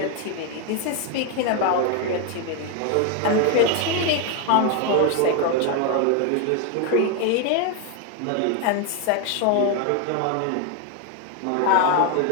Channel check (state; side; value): different; both; correlation 0.01